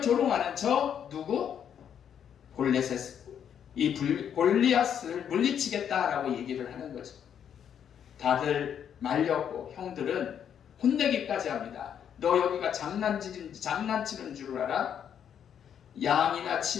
저 누구? 골리앗을 물리치겠다라고 얘기를 하는 거죠. 다들 말렸고 형들은 혼내기까지 합니다. 너 여기가 장난치는 줄 알아? 양이나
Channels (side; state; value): right; quieter; 8.7 dB